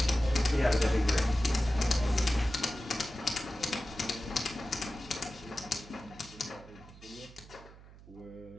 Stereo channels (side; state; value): right; noise; hum, 20 dB below the sound